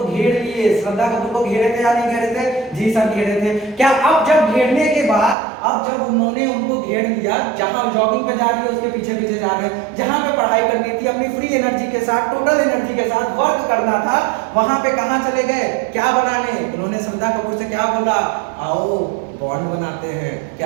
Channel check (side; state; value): left; drops out; at 5.4 s